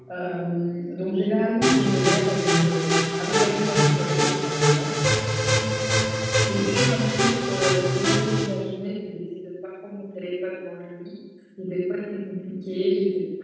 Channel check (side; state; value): both; identical; correlation 1.00